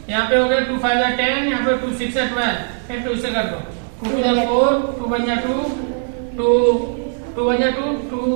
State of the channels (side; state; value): left; silent; digital silence